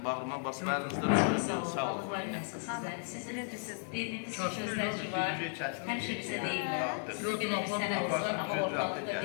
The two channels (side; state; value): right; silent; 55 dB below the other